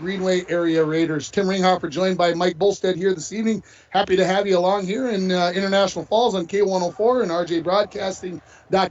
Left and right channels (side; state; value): both; identical; correlation 1.00